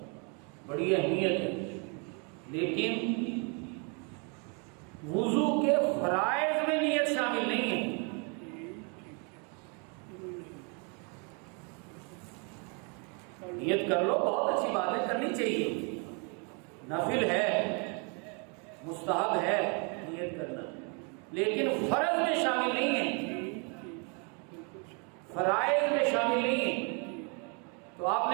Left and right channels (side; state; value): left; quieter; 35.8 dB